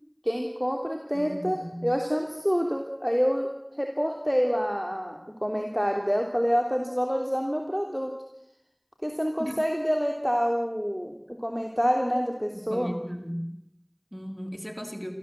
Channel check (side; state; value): both; identical; correlation 1.00